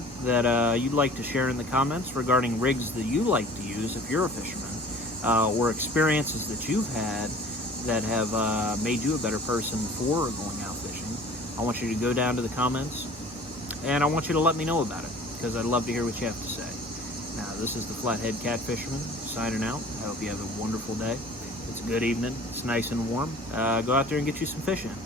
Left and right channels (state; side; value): normal; both; correlation 0.46